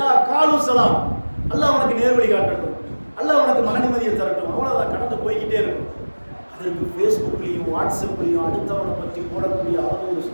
காலு சலாம், அல்லாஹ் அவனுக்கு நேர்வழி காட்டட்டும், அல்லாஹ் அவனுக்கு மன நிம்மதியை தரட்டும், அவ்வளவுதான், கடந்து போய்கிட்டே இருக்கும். அதற்கு ஃபேஸ்புக்லையும் வாட்ஸ்அப்லையும் அடுத்தவனை பற்றி போடக்கூடிய ஒரு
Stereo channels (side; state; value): both; inverted; correlation -1.00